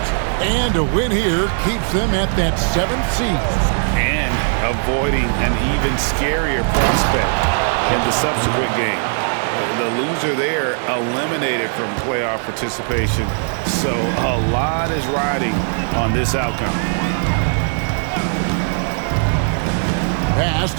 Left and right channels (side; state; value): left; silent; 60 dB below the other